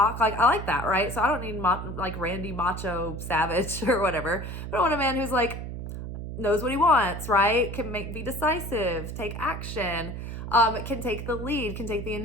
I like that, right? So I don't need Randy Macho Savage or whatever. But I want a man who's knows what he wants, right? Can be decisive, take action, can take the lead, can take the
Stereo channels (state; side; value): noise; right; hum, 7 dB below the sound